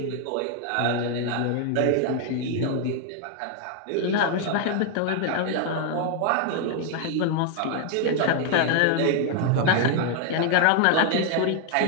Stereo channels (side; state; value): both; different; correlation 0.01